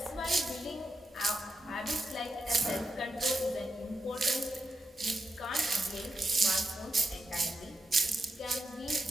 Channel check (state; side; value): normal; both; correlation 0.86